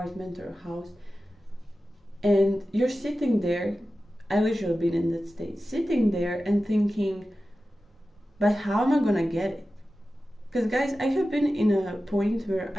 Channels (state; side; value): normal; both; correlation 0.94